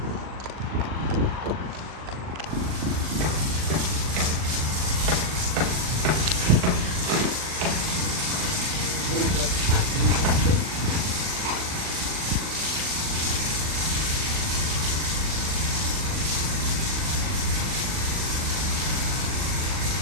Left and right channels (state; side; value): late; left; 39 ms